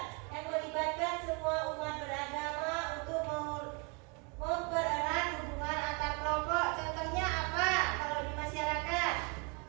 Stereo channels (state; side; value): quieter; left; 33.0 dB